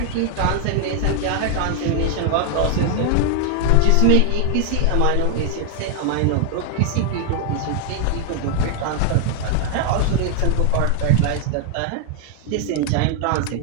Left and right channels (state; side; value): different; both; correlation 0.00